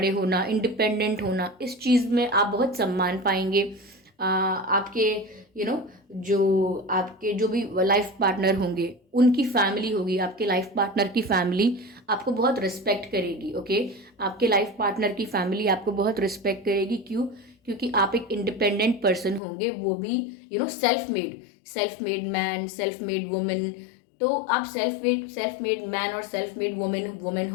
होना, इंडिपेंडेंट होना, इस चीज़ में आप बहुत सम्मान पाएंगे। आपके जो आपके जो भी लाइफ पार्टनर होंगे उनकी फैमिली होगी, आपके लाइफ पार्टनर की फैमिली आपको बहुत रिस्पेक्ट करेगी। ओके, आपके लाइफ पार्टनर की फैमिली आपको बहुत रिस्पेक्ट करेगी। क्यों? क्योंकि आप एक इंडिपेंडेंट पर्सन होंगे, वो भी self made man, self made women. तो आप सेल्फ मेड मैन और सेल्फ मेड वुमेन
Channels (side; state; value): right; drops out; at 19.4 s